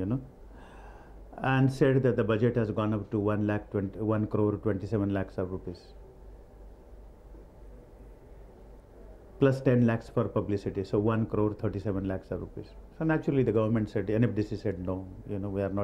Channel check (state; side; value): identical; both; correlation 1.00